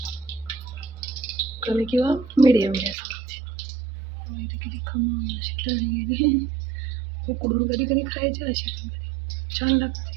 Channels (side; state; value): left; drops out; at 3.0 s